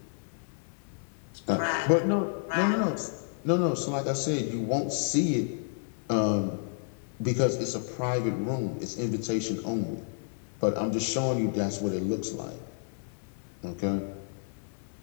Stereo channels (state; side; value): silent; right; digital silence